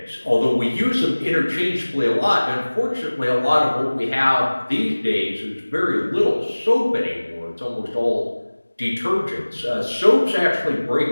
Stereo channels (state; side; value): inverted; both; correlation -1.00